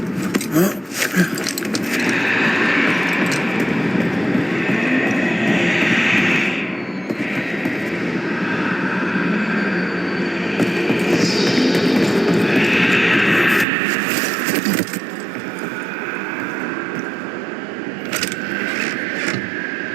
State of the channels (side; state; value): left; drops out; at 13.7 s